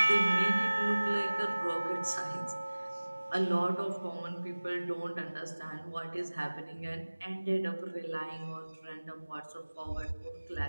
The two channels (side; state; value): both; inverted; correlation -1.00